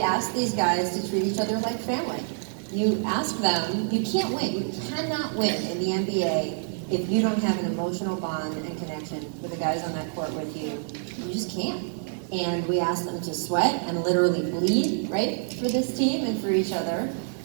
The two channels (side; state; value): left; silent; digital silence